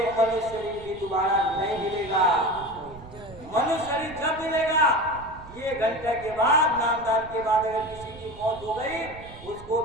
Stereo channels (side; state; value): right; noise; rumble, 18 dB below the sound